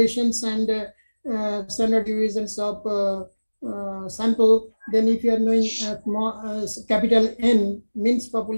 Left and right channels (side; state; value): both; inverted; correlation -1.00